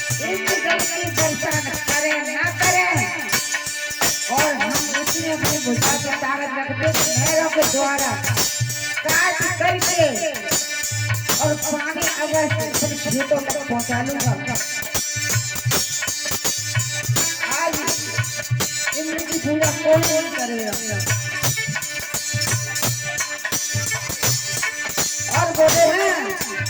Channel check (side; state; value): both; identical; correlation 1.00